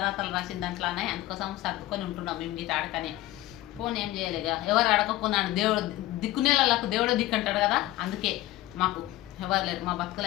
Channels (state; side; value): quieter; right; 16.5 dB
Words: రాసిన దాంట్లోనే. అందుకోసం సర్దుకొని ఉంటున్నాం మేము గిట్ట అడకని. ఫోన్ ఏం చేయలేగా, ఎవరు అడగకున్నాను. దేవుడు దిక్కునేళ్ళకు దేవుడే దిక్కు అంటాడు కదా, అందుకే మాకు ఎవరు లేరు. మా